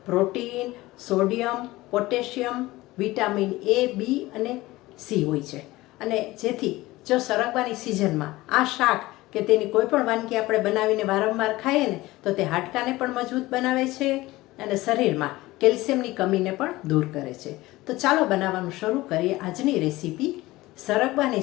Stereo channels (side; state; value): right; quieter; 18.8 dB